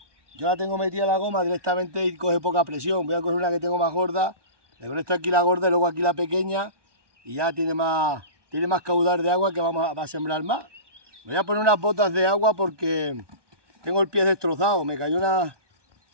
yo la tengo metida en la goma directamente y coge poca presión. Voy a coger una que tengo más gorda. Le conecto aquí la gorda y luego aquí la pequeña. Y ya tiene más caudal de agua que va a sembrar más. Me voy a poner unas botas de agua porque tengo el pie destrozado. Me cayó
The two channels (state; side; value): late; left; 1.2 ms